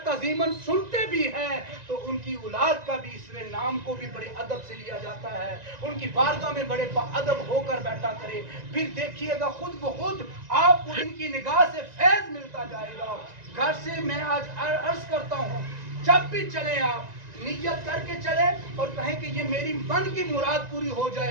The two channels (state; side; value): late; left; 1.9 ms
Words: तज़ीमन सुनते भी हैं, तो उनकी औलाद का भी इसमें नाम को भी बड़े अदब से लिया जाता है। उनकी बारगाह में बड़े अदब होकर बैठा करे। फिर देखिएगा खुद ब खुद आपको इनकी निगाह से फैज मिलता जाएगा। घर से मैं आज अर्ज करता हूँ, जब भी चले आप नियत करके चले और कहें कि ये मेरी मन की मुराद पूरी हो